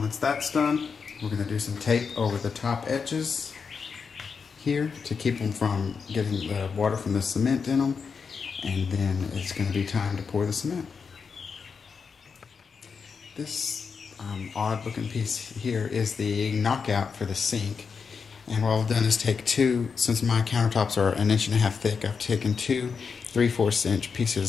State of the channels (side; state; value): right; quieter; 5.6 dB